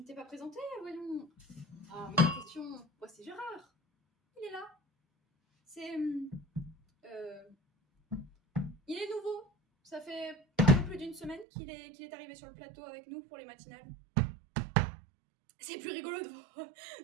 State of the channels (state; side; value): drops out; left; at 11.5 s